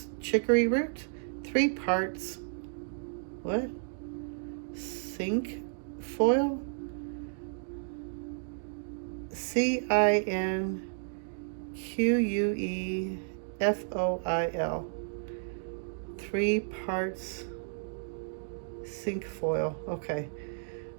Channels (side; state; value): left; silent; digital silence